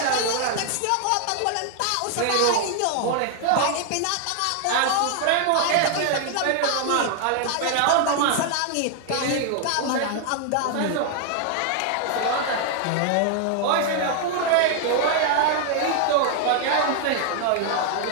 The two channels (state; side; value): different; both; correlation 0.00